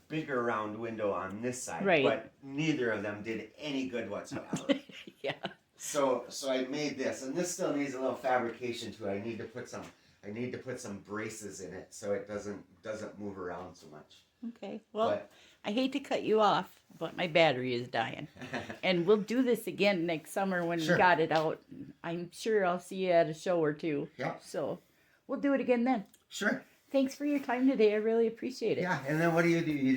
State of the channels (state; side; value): identical; both; correlation 1.00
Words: bigger round window on this side. Right. But neither of them did any good whatsoever. Yeah. So I made this, and this still needs a little fabrication too. I need to put some braces in it so it doesn't move around so much. Okay. Well, I hate to cut you off, but my battery is dying. And we'll do this again next summer when we got it out. I'm sure I'll see you at a show or two. Yeah. So we'll do it again then. Sure. Thanks for your time today. I really appreciate it. Yeah, and then what do? You